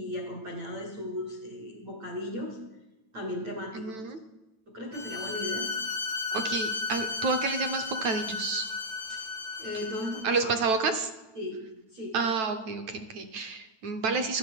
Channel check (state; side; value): late; left; 9.1 ms